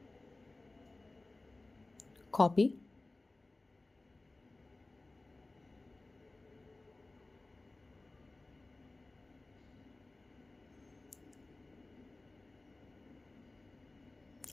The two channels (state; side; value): quieter; right; 3.1 dB